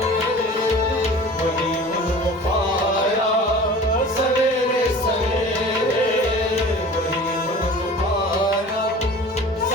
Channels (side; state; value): both; normal; correlation 0.41